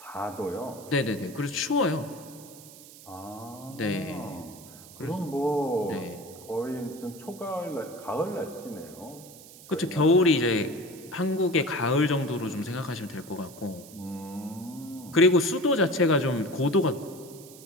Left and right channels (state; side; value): noise; right; hiss, 19 dB below the sound